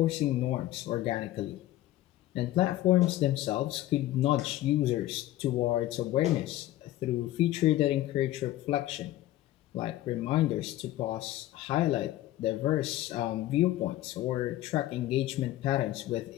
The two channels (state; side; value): quieter; right; 15.0 dB